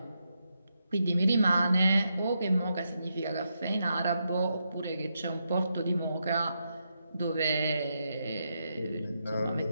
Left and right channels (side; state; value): both; inverted; correlation -0.83